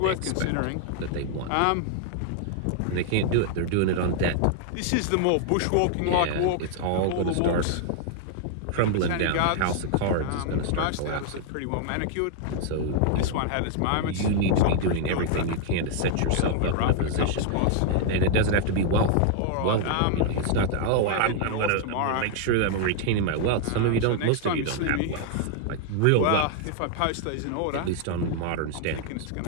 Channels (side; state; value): both; different; correlation 0.00